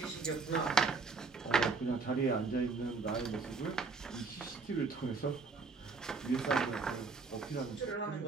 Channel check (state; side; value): quieter; left; 4.4 dB